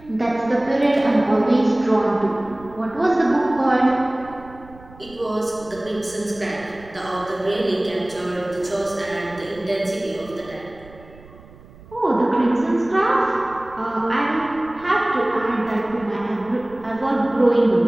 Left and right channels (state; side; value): noise; right; rumble, 21 dB below the sound